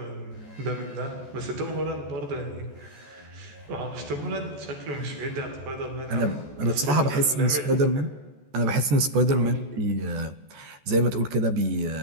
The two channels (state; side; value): late; left; 14 ms